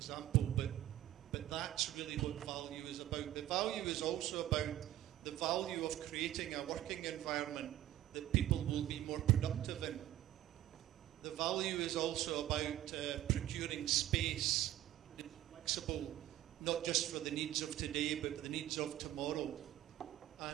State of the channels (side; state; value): left; quieter; 13.6 dB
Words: but that's really what value is about. The value is also about the value of creating a working environment that people will be more productive in. The value is also about procuring space, flexible, not just for the needs of today, but the needs of tomorrow.